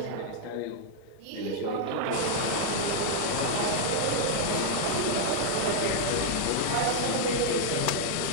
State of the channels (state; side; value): different; both; correlation -0.01